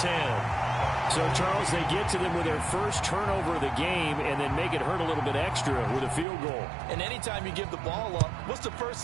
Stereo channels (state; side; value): drops out; left; at 6.2 s